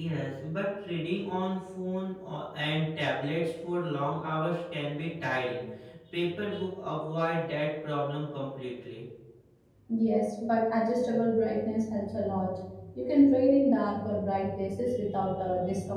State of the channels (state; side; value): identical; both; correlation 1.00